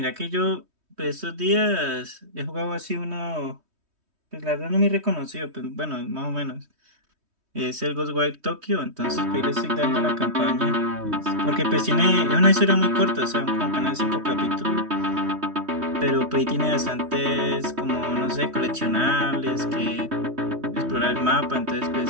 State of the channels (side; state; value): left; late; 3.1 ms